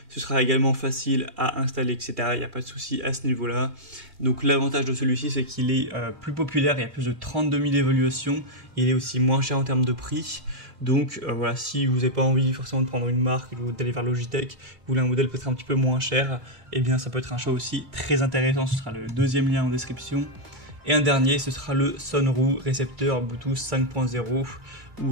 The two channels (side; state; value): left; late; 2.2 ms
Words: Ce sera également facile à installer, etc. Il n'y a pas de souci à ce niveau-là. Donc l'avantage de celui-ci, c'est qu'il est plus populaire. Il y a plus de 32 000 évaluations. Il est aussi moins cher en termes de prix. Donc voilà, si vous n'avez pas envie forcément de prendre une marque ou d'aller vers Logitech, vous voulez un modèle peut-être un petit peu moins cher, eh bien ça peut être un choix aussi très intéressant. Ce sera le deuxième lien en description. Et un dernier, ce sera le Sonru récepteur Bluetooth 5.0